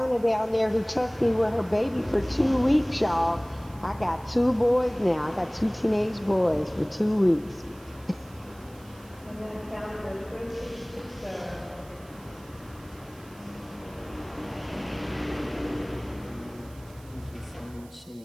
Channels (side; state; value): right; noise; hiss, 25 dB below the sound